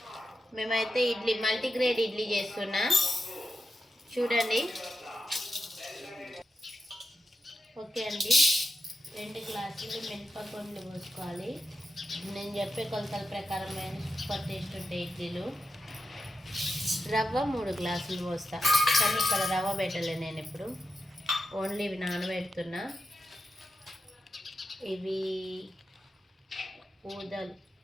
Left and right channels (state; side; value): normal; both; correlation 0.88